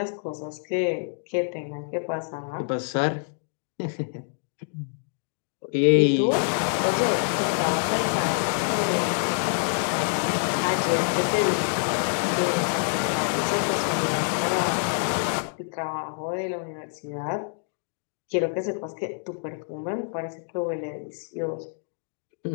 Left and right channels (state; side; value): silent; right; digital silence